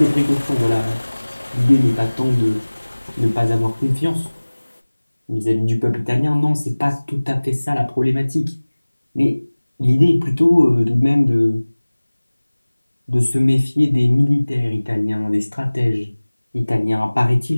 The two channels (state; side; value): inverted; both; correlation -1.00